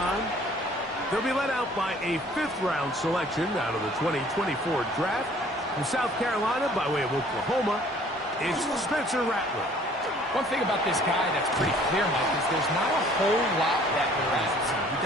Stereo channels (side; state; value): both; normal; correlation 0.55